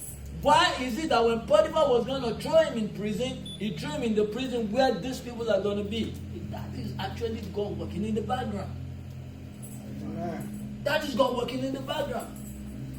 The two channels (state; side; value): identical; both; correlation 1.00